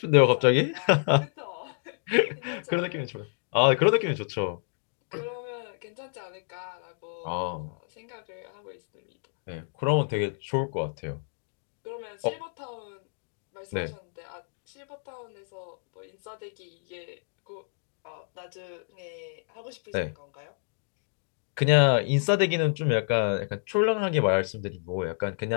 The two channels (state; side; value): silent; right; digital silence